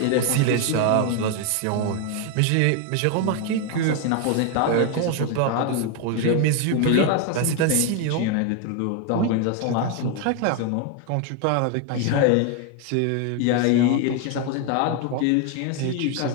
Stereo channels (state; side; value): different; both; correlation 0.01